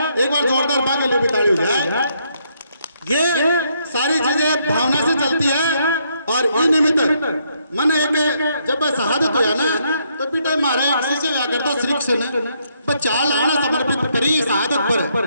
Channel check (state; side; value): inverted; both; correlation -0.73